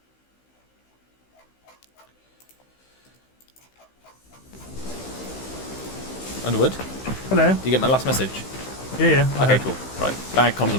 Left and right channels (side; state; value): right; late; 15 ms